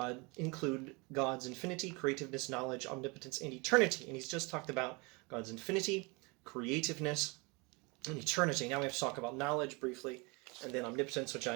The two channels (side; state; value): left; quieter; 28.2 dB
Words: God's infinity, creativeness, knowledge, omnipotence, and eternity. And he's just talked about God's infinity, creativeness, and eternity. Now we have to talk about knowledge briefly, and then omnipotence, which I